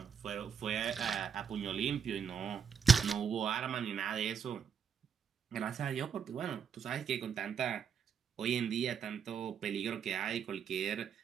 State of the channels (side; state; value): left; quieter; 7.1 dB